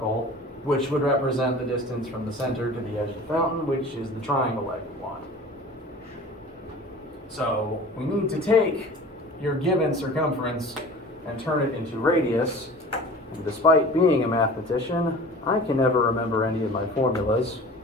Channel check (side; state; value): both; normal; correlation 0.41